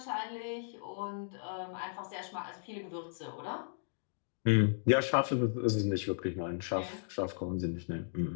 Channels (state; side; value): silent; right; digital silence